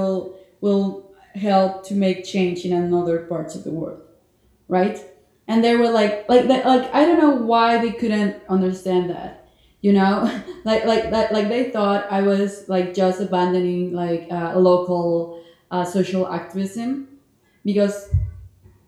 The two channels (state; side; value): identical; both; correlation 1.00